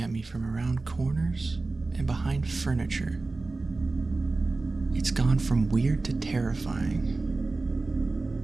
at Me from Around Corners and Behind Furniture. It's gone from weird to terrifying.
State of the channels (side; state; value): left; quieter; 3.5 dB